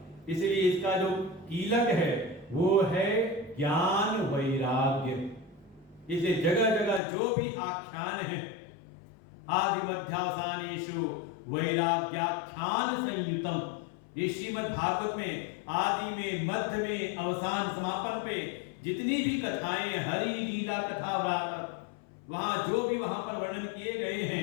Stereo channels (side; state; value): right; drops out; at 7.0 s